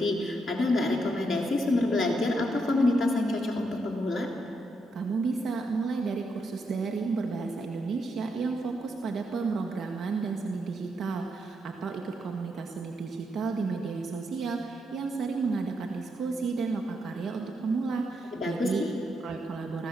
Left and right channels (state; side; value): normal; both; correlation 0.80